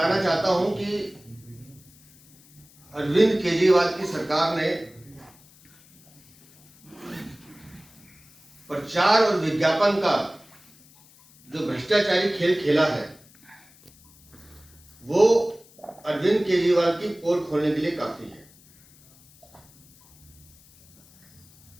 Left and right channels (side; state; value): left; noise; hiss, 27 dB below the sound